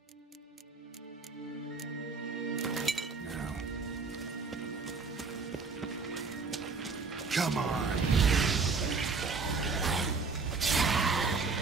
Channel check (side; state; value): left; quieter; 4.5 dB